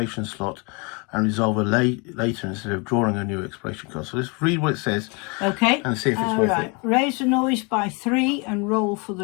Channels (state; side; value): quieter; right; 30.9 dB